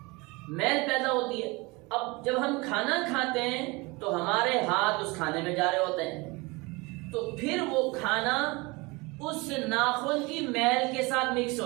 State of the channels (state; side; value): quieter; left; 25.2 dB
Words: میل پیدا ہوتی ہے۔ اب جب ہم کھانا کھاتے ہیں تو ہمارے ہاتھ اس کھانے میں جا رہے ہوتے ہیں، تو پھر وہ کھانا اس ناخن کی میل کے ساتھ مکس